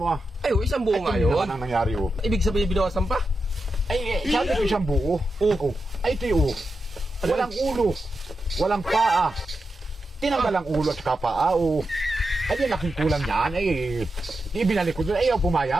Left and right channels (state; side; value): normal; both; correlation 0.89